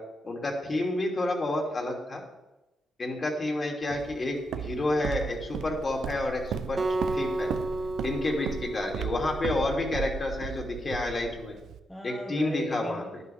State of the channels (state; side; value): normal; both; correlation 0.83